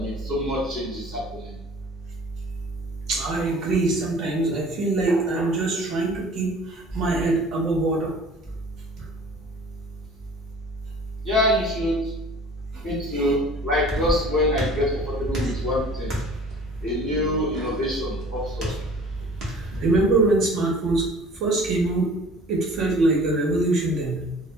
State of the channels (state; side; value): normal; both; correlation 0.47